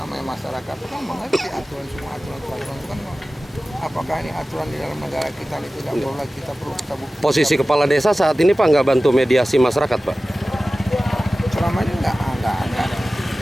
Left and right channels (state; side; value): normal; both; correlation 0.96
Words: masyarakat kan mengerti aturan semua aturan itu kan. Apakah ini aturan di dalam negara kita ini tidak boleh kita perlu kita buktikan. Posisi kepala desa saat ini Pak nggak bantu mediasi masyarakat Pak? Selama ini enggak ada.